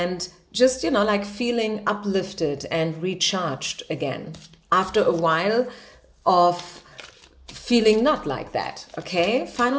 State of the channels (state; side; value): identical; both; correlation 1.00